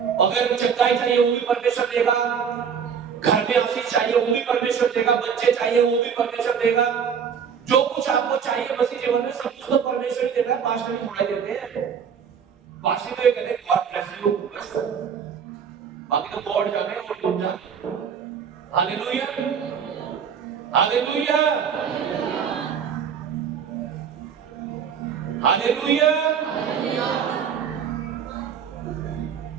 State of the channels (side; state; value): left; quieter; 7.2 dB